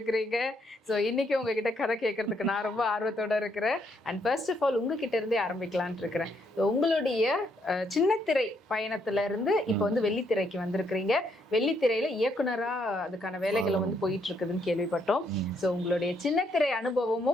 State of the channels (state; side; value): normal; both; correlation 0.73